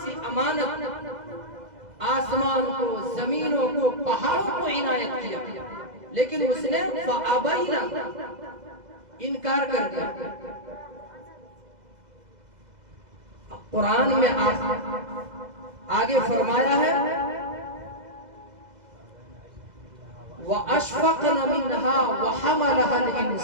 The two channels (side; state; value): left; late; 2.0 ms